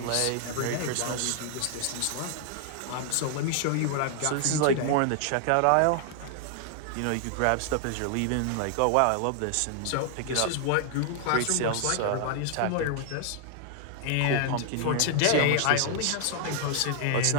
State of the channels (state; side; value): different; both; correlation 0.00